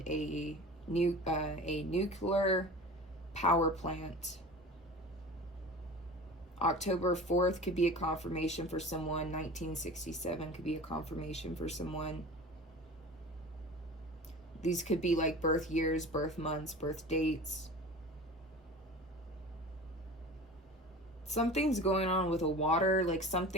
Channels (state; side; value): normal; both; correlation 0.37